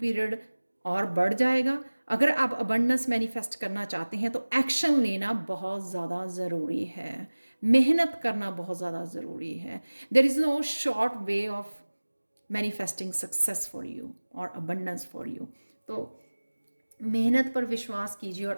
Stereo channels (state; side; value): inverted; both; correlation -1.00